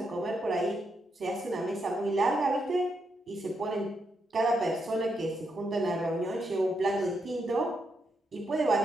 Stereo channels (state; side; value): normal; both; correlation 0.81